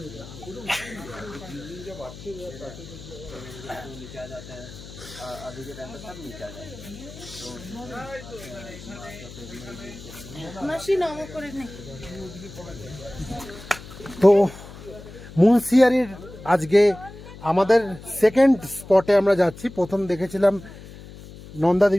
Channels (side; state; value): left; noise; hum, 16 dB below the sound